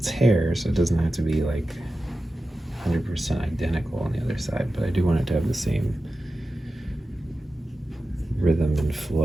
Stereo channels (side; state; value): both; normal; correlation 0.93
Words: hair, so it doesn't have to be like 100% identical on the other side, but I do want it to have the same rhythm and